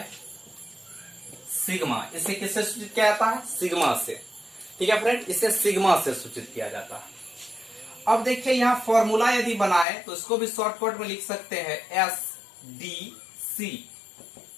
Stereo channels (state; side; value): drops out; right; at 9.9 s